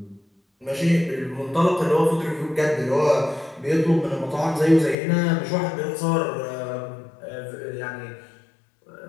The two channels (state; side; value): drops out; right; at 5.0 s